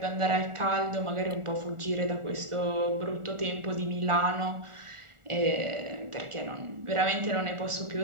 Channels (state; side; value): late; left; 1.4 ms